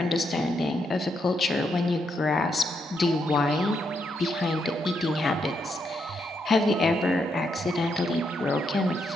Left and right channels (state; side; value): normal; both; correlation 0.79